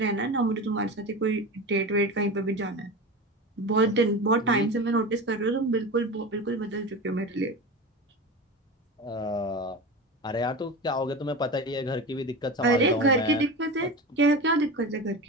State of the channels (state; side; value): normal; both; correlation 0.27